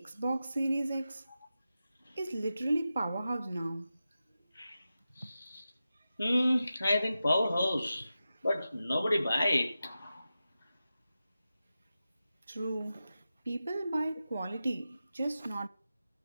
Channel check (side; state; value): both; inverted; correlation -0.92